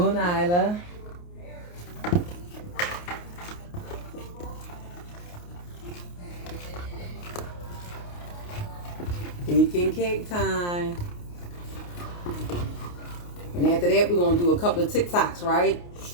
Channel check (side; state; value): right; late; 28 ms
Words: Nyla. Baking cake time. And after that, we're going to do a couple of TikToks, right?